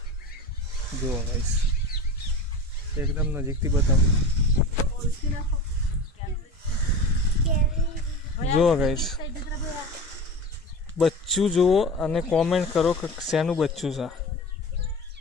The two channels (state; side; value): normal; both; correlation 0.31